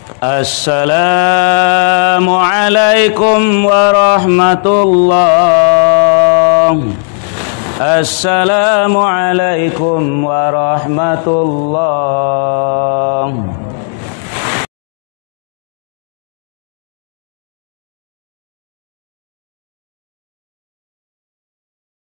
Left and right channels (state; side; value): silent; right; 62 dB below the other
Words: السلام عليكم ورحمة الله. السلام عليكم ورحمة الله.